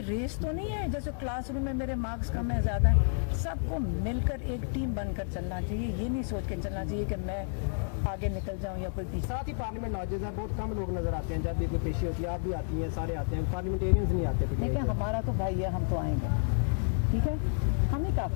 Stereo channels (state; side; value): silent; right; 57 dB below the other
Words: रेस तो नहीं है जैसे क्लासरूम में मेरे मार्क्स कम है ज़्यादा है, सबको मिलकर एक टीम बनकर चलना चाहिए। ये नहीं सोच के चलना चाहिए कि मैं आगे निकल जाऊँ या कोई पीछे। साथ ही पार्लियामेंट नौजवान है, बहुत कम लोग नजर आते हैं, जब भी कोई पेशी होती है आप भी आती हैं, सारे आते हैं, पार्लियामेंटेरियंस नहीं आते। देखिए हमारा तो भाई है, हम तो आएंगे, ठीक है, हम ही